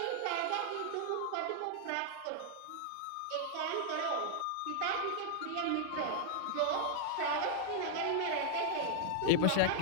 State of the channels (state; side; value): different; both; correlation 0.00